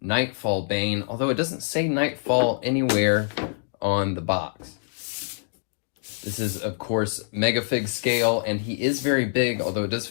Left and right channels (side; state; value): right; silent; digital silence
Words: Knightfall BANE, although it doesn't say Knightfall anywhere on the box. This is, of course, Megafig scale, and he is very big, although it does